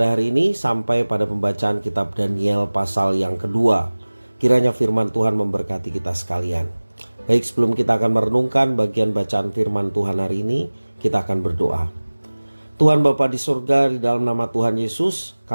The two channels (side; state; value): both; inverted; correlation -1.00